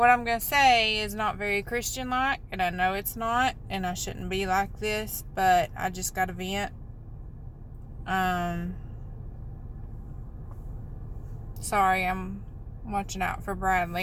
I'm gonna say is not very Christian-like, and I know it's not, and I shouldn't be like this, but I just gotta vent. Sorry, I'm watching out for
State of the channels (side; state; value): both; identical; correlation 1.00